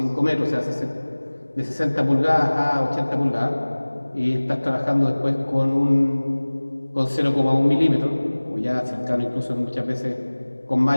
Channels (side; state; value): both; inverted; correlation -1.00